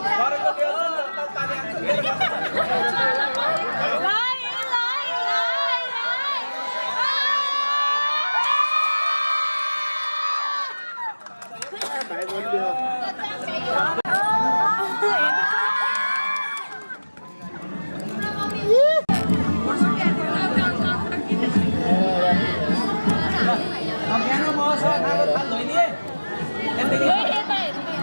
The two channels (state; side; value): inverted; both; correlation -1.00